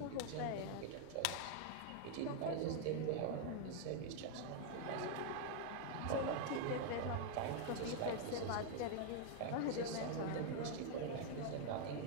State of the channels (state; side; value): different; both; correlation 0.00